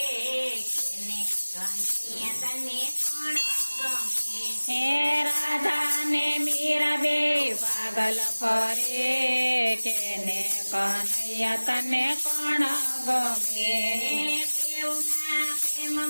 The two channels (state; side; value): inverted; both; correlation -1.00